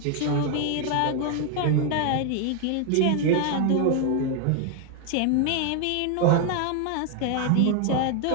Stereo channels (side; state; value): both; different; correlation 0.01